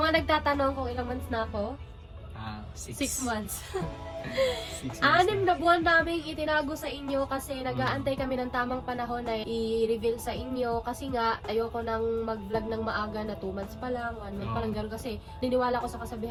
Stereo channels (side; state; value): both; identical; correlation 1.00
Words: mga nagtatanong kung ilang months na ako, 6 months. 6 months. 6 na buwan namin itinago sa inyo kasi nag-aantay kami ng tamang panahon na i-reveal sa inyo kasi nga ayoko nang mag-vlog ng maaga na 2 months pa lang, 1 month pa lang gano'n kasi niniwala ko sa